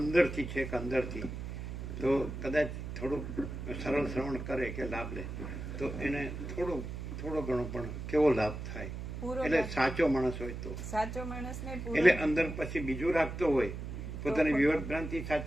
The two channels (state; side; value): noise; right; hum, 7 dB below the sound